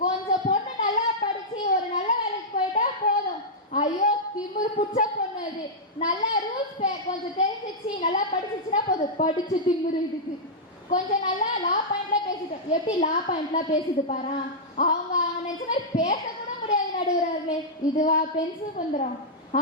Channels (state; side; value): normal; both; correlation -0.09